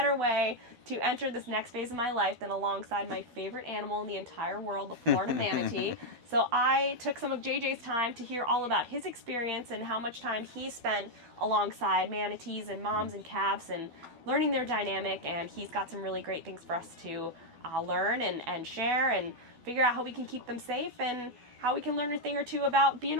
way to enter this next phase of my life than alongside my favorite animal in the entire world, the Florida manatee. So I took some of JJ's time to hear all about his experience and how much time he spent alongside manatees and moms and calves and learning their dynamic, and he's got some really great things for us to learn and share and figure out how we can keep them safe and how we can learn a thing or two about being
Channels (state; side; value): late; left; 12 ms